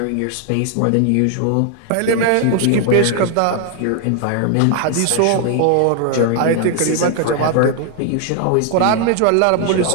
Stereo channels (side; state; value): both; different; correlation 0.00